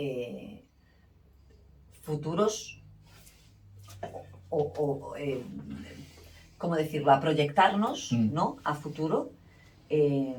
futuros ¿cómo decirlo? A proyectarnos, ¿no? A futuro,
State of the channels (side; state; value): both; identical; correlation 1.00